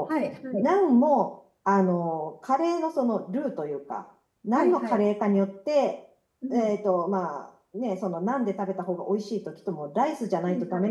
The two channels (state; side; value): identical; both; correlation 1.00